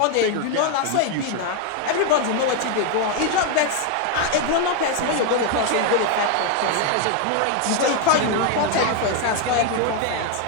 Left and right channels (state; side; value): different; both; correlation 0.01